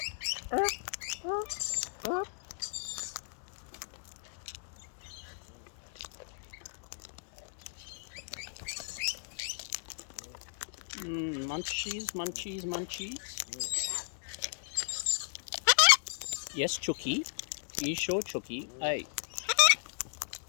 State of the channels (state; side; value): silent; right; digital silence